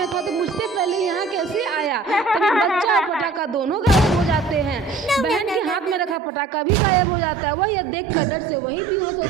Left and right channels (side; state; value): left; drops out; at 6.2 s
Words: था, तो मुझसे पहले यहाँ कैसे आया। तभी बच्चा और पटाखा दोनों गायब हो जाते हैं। बहन के हाथ में रखा पटाखा भी गायब हो जाता है। वह यह देखकर डर से वहीं बेहोश हो